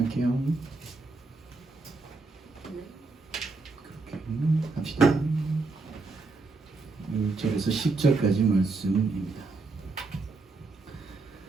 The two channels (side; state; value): left; quieter; 3.7 dB